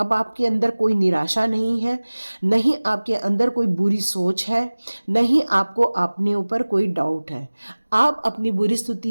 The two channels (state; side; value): inverted; both; correlation -1.00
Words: आपके अंदर कोई निराशा नहीं है, नहीं आपके अंदर कोई बुरी सोच है, नहीं आपको अपने ऊपर कोई डाउट है। आप अपनी बुरी